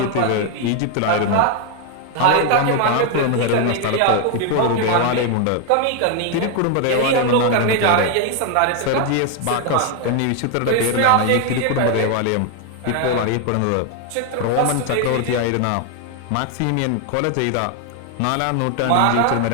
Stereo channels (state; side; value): different; both; correlation 0.01